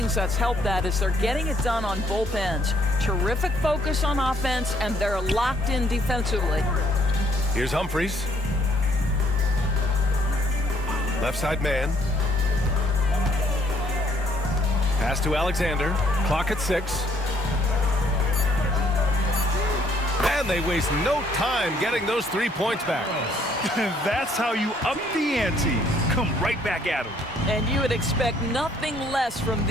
that's helped that is they're getting it done on both ends. Terrific focus on offense, and they're locked in defensively. Here's Humphries. Left side man. Pass to Alexander. Clock at 6. And they waste no time getting those 3 points back. That's how you up the ante. Come right back at them. And you would expect nothing less from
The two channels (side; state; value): both; normal; correlation 0.66